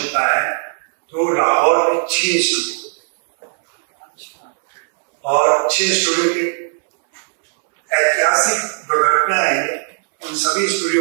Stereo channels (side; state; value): left; silent; 68 dB below the other